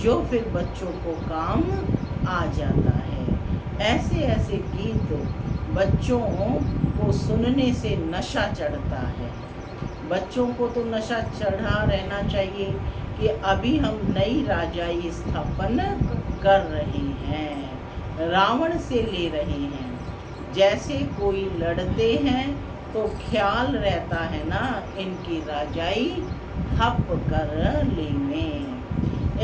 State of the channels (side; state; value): both; identical; correlation 1.00